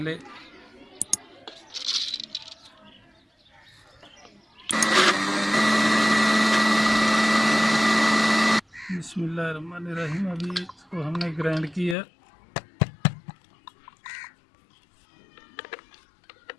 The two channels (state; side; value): drops out; right; at 12.0 s